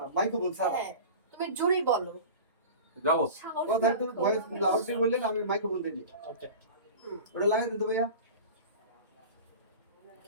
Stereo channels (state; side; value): inverted; both; correlation -0.35